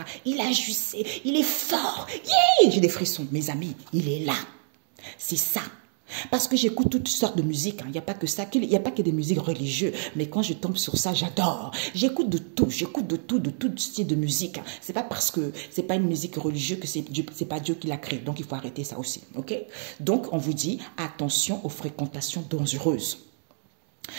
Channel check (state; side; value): silent; left; digital silence